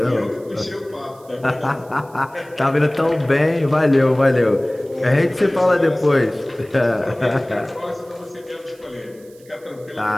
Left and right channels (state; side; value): noise; right; hiss, 28 dB below the sound